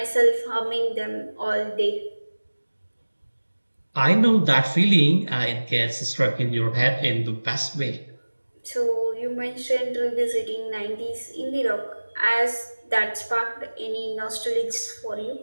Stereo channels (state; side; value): inverted; both; correlation -1.00